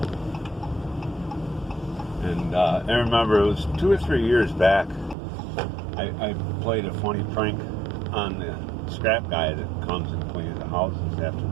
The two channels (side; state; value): left; drops out; at 5.2 s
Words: And I remember it was 2 or 3 years back, I played a funny prank on the scrap guy that comes and cleans the houses after